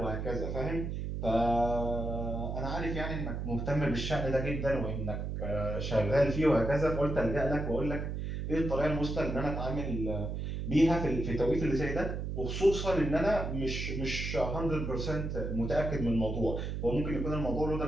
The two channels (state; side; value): noise; right; hum, 3 dB below the sound